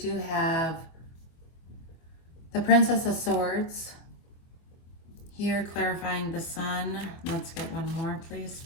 have the Princess of Swords here clarifying the Sun. Let's get one more, please,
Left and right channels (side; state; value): right; late; 24 ms